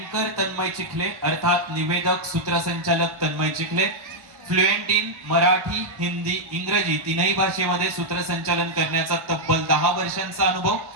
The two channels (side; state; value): left; late; 1.1 ms